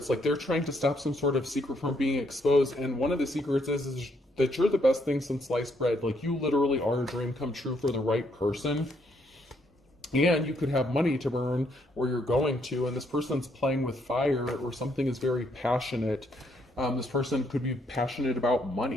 like they're trying to stop some sort of secret from being exposed, and one of the secrets is that you're the best thing since sliced bread. Like, you literally are a dream come true for the right person, and you could have money to burn where you're going to, and this person's playing with fire, or something is very passionate. This person could be passionate about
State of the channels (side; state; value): both; normal; correlation 0.72